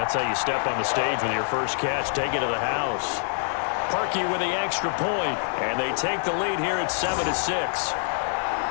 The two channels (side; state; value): right; silent; digital silence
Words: how you step on the stage with your first catch. Take it to the house. Parkey with the extra point, and they take the lead here at 7-6.